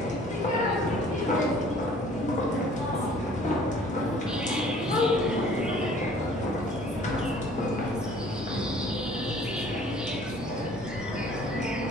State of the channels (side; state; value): both; normal; correlation 0.53